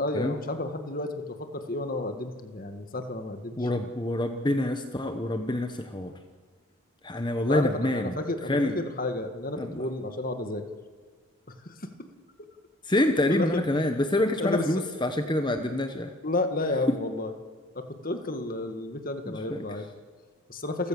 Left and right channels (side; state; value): both; normal; correlation 0.55